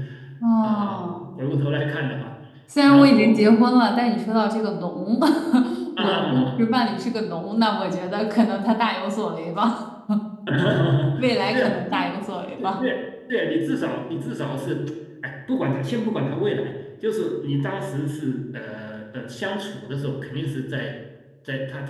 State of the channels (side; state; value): both; identical; correlation 1.00